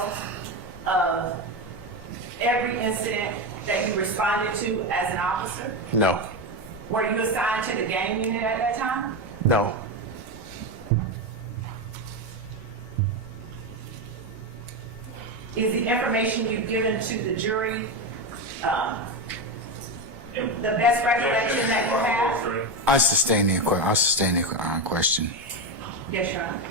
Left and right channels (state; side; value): normal; both; correlation 0.14